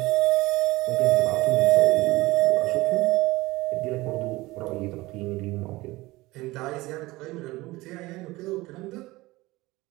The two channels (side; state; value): left; quieter; 20.1 dB